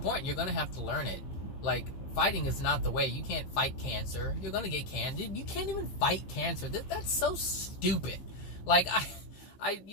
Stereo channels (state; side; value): late; right; 15 ms